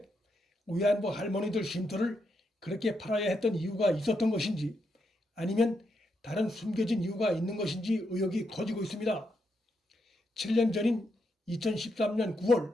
위안부 할머니들 쉼터를 그렇게 팔아야 했던 이유가 있었던 것인지, 아니면 다른 숨겨진 이유가 있는 것인지 의혹이 커지고 있습니다. 7년 전인 2013년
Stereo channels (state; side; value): normal; both; correlation 0.81